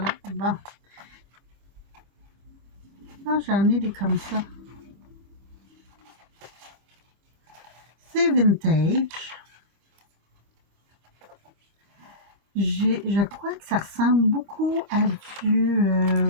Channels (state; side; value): late; left; 25 ms